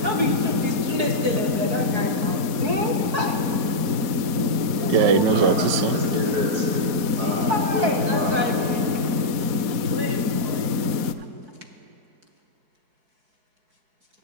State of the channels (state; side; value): late; left; 4.2 ms